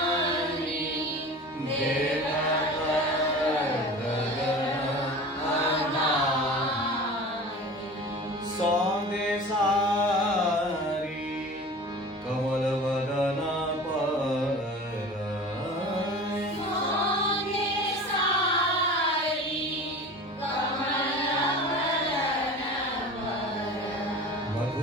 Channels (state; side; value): normal; both; correlation 0.37